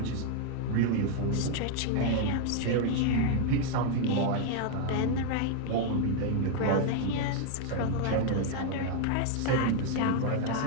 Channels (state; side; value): different; both; correlation 0.00